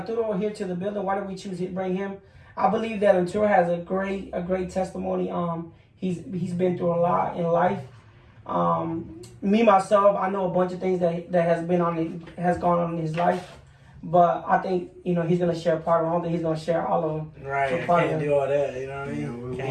here to the building? Why did we choose to bring him? I believe that Arturo has a great testimony. He's been through a lot in life. Me myself, I know a bunch of things that has gone on in his life. But I think, he's going to share part of it. I don't think he's going to share all of them. Right, I can't do all that, you know what I mean?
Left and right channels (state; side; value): identical; both; correlation 1.00